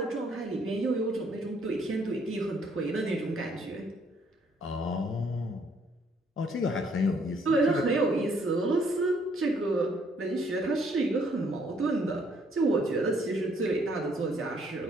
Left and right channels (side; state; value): both; normal; correlation 0.66